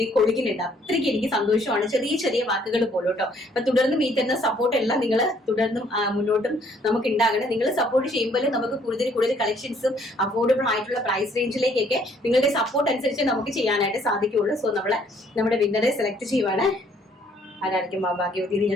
കൊടുക്കുന്നുണ്ട്. അത്രയ്ക്ക് എനിക്ക് സന്തോഷമാണ് ചെറിയ ചെറിയ വാക്കുകൾ പോലും കേട്ടോ. അപ്പൊ തുടർന്നും ഈ തരുന്ന സപ്പോർട്ട് എല്ലാം നിങ്ങൾ തുടർന്നും മുന്നോട്ടും നമുക്ക് ഉണ്ടാകണം. നിങ്ങൾ സപ്പോർട്ട് ചെയ്യുമ്പോൾ നമുക്ക് കൂടുതൽ കളക്ഷൻസും അഫോർഡബിൾ ആയിട്ടുള്ള പ്രൈസ് റേഞ്ചിലേക്കൊക്കെ നിങ്ങളുടെ സപ്പോർട്ട് അനുസരിച്ച് നമുക്ക് ചെയ്യാനായിട്ട് സാധിക്കുകയുള്ളൂ. സോ നമ്മുടെ വിന്നറെ സെലക്ട് ചെയ്യുവാണ്. ആരായിരിക്കും ഭാഗ്യവതി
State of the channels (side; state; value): both; normal; correlation 0.64